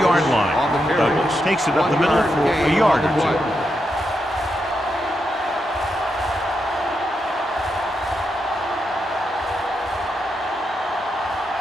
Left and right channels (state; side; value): normal; both; correlation 0.84